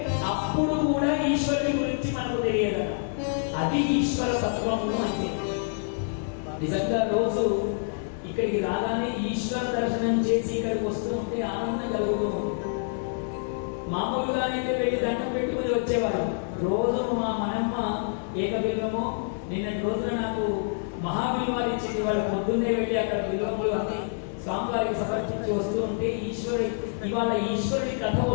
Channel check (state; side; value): silent; right; 60 dB below the other